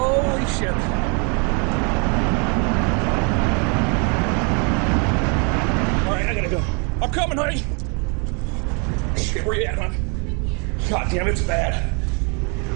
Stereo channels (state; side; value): quieter; left; 34.7 dB